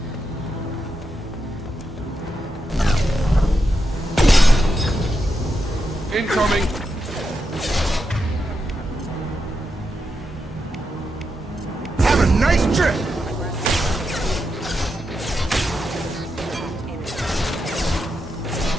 Incoming! Have a nice trip!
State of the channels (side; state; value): both; normal; correlation 0.85